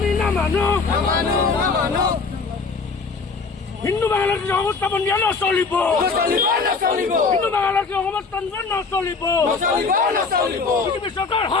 না মানো হিন্দু বাংলাদেশ অবস্থাপন নিয়ে নচলিব হিন্দু বাংলাদেশ অবস্থান নচলিব বিজেপি সরকার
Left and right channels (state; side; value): quieter; right; 4.6 dB